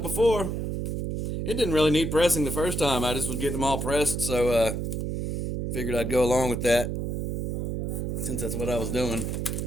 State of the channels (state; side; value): noise; right; hum, 2 dB below the sound